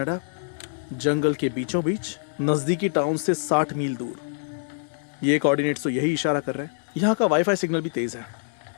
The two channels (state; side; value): silent; right; digital silence